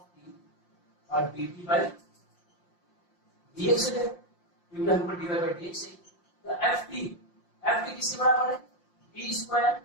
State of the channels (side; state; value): right; late; 5.7 ms